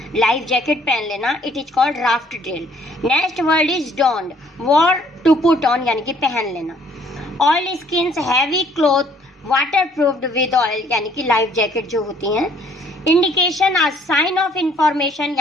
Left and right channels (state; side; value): normal; both; correlation 0.61